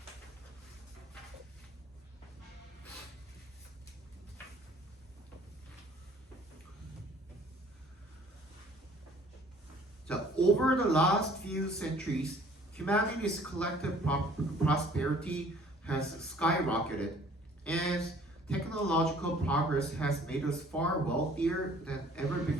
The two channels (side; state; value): both; normal; correlation 0.55